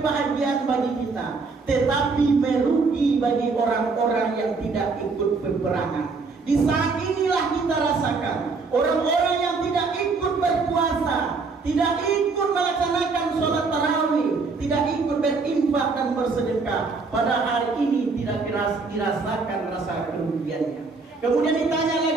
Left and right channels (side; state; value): left; quieter; 4.3 dB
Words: bagi kita, tetapi merugi bagi orang-orang yang tidak ikut peperangan. Di saat inilah kita rasakan orang-orang yang tidak ikut berpuasa, tidak ikut melaksanakan sholat tarawih, tidak ikut berinfak dan bersedekah, pada hari ini tidak dirasakan rasa kerugiannya. Kemudian ditanya